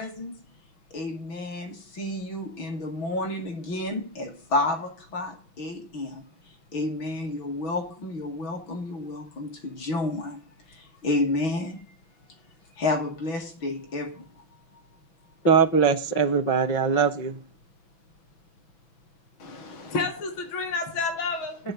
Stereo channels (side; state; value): right; late; 6.0 ms